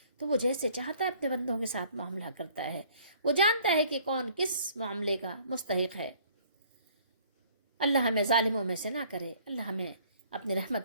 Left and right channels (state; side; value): inverted; both; correlation -0.57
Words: تو وہ جیسے چاہتا ہے اپنے بندوں کے ساتھ معاملہ کرتا ہے. وہ جانتا ہے کہ کون کس معاملے کا مستحق ہے. اللہ ہمیں ظالموں میں سے نہ کرے، اللہ ہمیں اپنی